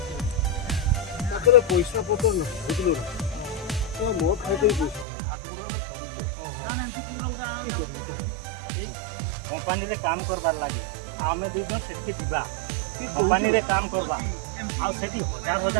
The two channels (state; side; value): drops out; left; at 5.1 s